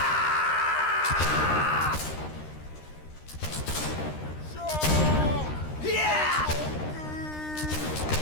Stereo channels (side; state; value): right; late; 13 ms